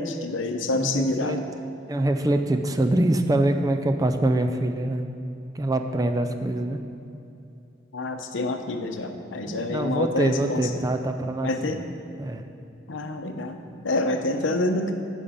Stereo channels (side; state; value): both; normal; correlation 0.62